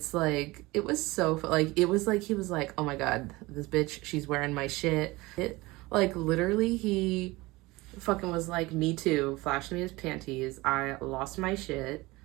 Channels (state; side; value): quieter; left; 21.4 dB